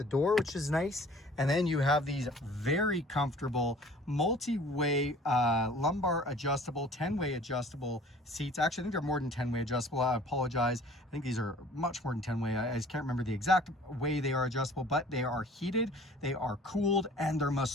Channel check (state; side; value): normal; both; correlation 0.50